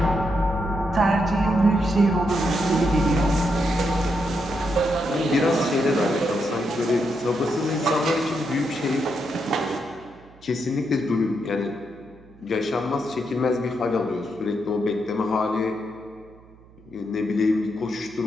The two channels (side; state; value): right; noise; hum, 25 dB below the sound